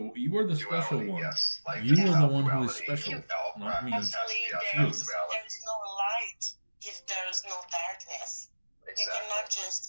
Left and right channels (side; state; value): both; inverted; correlation -1.00